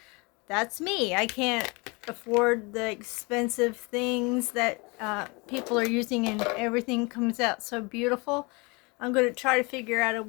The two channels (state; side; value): quieter; right; 28.0 dB